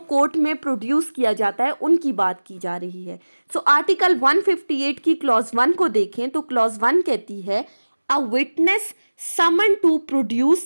court में produce किया जाता है उनकी बात की जा रही है. सो आर्टिकल 158 की क्लॉज 1 को देखें तो क्लॉज 1 कहती है a witness summon to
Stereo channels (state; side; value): inverted; both; correlation -1.00